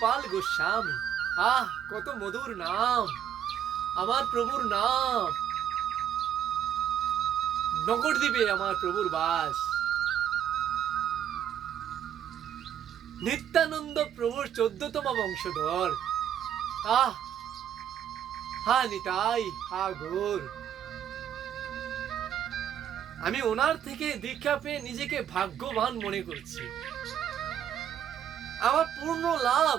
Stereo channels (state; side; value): quieter; left; 9.7 dB